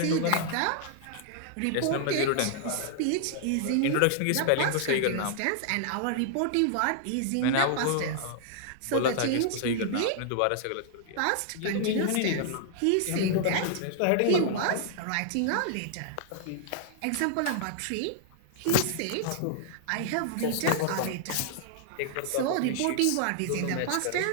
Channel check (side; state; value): both; different; correlation -0.01